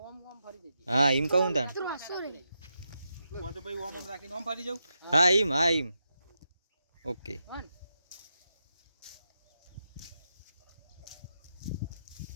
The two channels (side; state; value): both; inverted; correlation -0.86